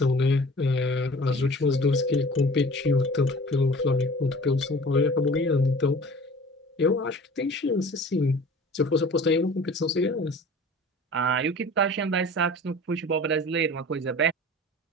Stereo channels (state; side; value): normal; both; correlation 0.43